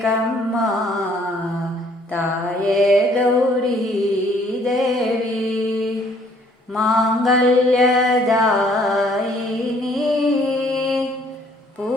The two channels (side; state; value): both; normal; correlation 0.61